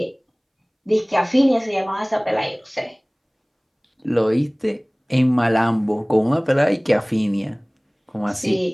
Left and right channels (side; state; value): both; identical; correlation 1.00